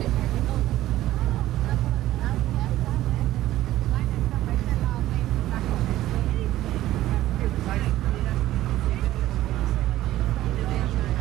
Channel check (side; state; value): left; quieter; 14.7 dB